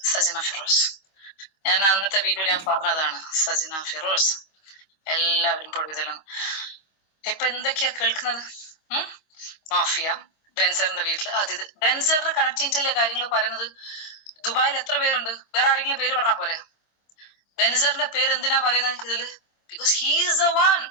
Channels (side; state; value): right; late; 25 ms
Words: സജിന ഫിറോസ്. ഞാൻ അന്നത്തെ വീഡിയോയിൽ ഞാൻ പറഞ്ഞതാണ് സജിന ഫിറോസ് എല്ലാവരും പൊടുതിലാണ്. ഇപ്പൊ എന്തൊക്കെയാ കേൾക്കുന്നത്? മാഫിയ, ബെൻസറിന്റെ വീട്ടില് അതിഥി. ബെൻസറിന്റെ കണക്ടിവിറ്റിയിലെ കാര്യങ്ങൾ പറയുന്നത്. ദുബായിൽ എത്ര പേരുണ്ട്? വേറെ ആരെങ്കിലും പേര് പറഞ്ഞാൽ പോരെ? ബെൻസറിന്റെ പേര് എന്തിനാ പറയുന്നത് ഇതില്? Because he's A one.